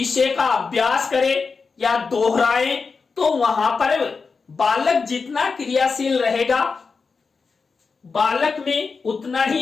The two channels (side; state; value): right; quieter; 4.8 dB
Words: का अभ्यास करें या दोहराएं, तो वहां पर बालक जितना क्रियाशील रहेगा, बालक में उतना